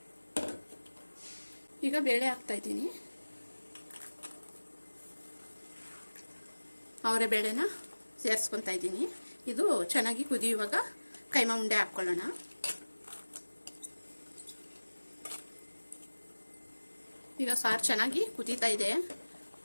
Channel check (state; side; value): inverted; both; correlation -1.00